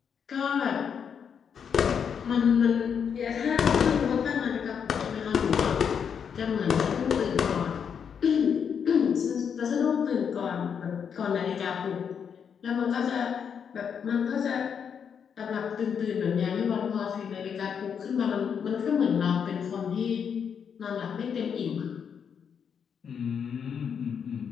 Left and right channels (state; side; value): quieter; right; 7.2 dB